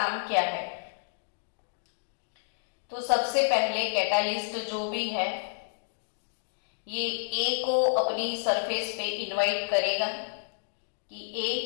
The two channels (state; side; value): silent; right; digital silence